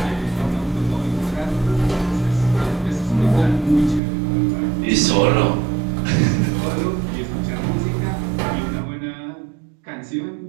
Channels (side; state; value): left; drops out; at 4.0 s